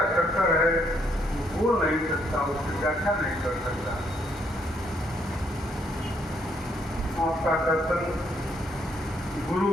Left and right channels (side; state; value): both; normal; correlation 0.71